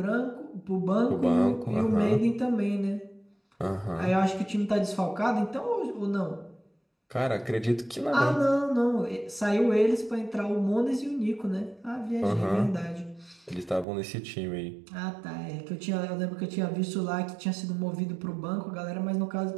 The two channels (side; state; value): left; drops out; at 13.9 s